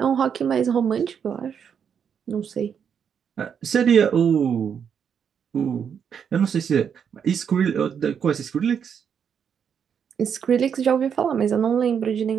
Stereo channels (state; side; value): quieter; left; 7.5 dB